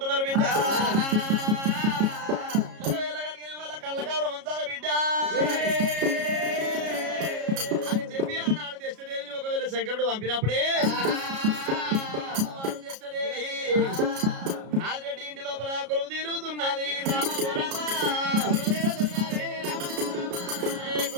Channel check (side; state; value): left; late; 33 ms